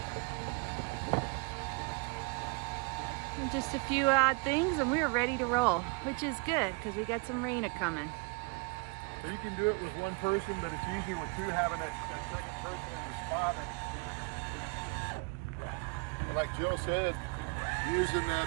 And just a few odd things and we're ready to roll, which is good because we got some rain a-coming. So you can do it with one person, but it's easier with two, having that second person in the spot. And like Jill said, using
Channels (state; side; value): quieter; left; 30.5 dB